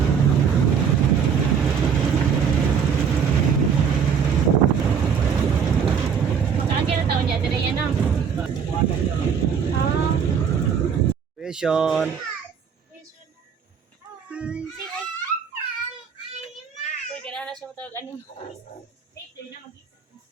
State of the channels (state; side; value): quieter; left; 7.0 dB